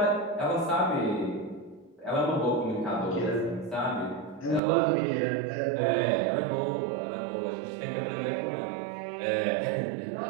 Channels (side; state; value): left; drops out; at 4.6 s